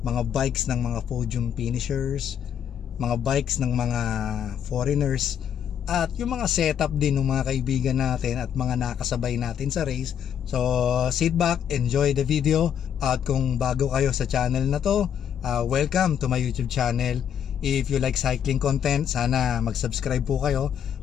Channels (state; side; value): quieter; right; 8.8 dB